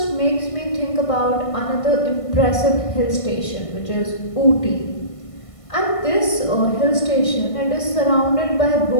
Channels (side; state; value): right; late; 1.5 ms